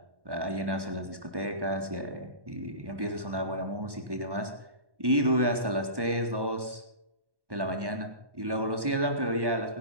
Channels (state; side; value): late; left; 1.1 ms